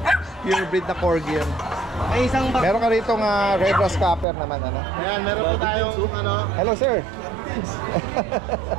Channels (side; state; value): left; drops out; at 4.2 s